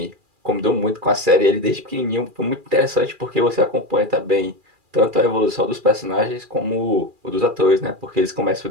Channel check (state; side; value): late; left; 2.4 ms